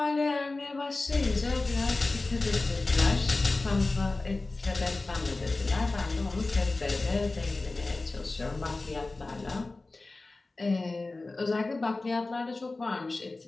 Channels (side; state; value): right; quieter; 3.3 dB